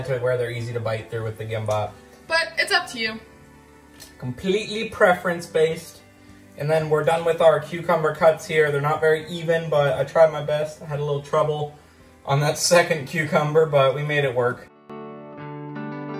to where they're easy to bite through with the gimbap. But it's up to you. Completely preference based. And then we're done with our cucumber cuts here. They're not very even, but I tried my best. I had a little trouble on that second cucumber, but we made it work.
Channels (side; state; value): both; identical; correlation 1.00